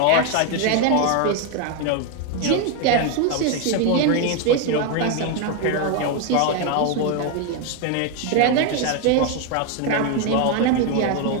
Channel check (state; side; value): different; both; correlation 0.01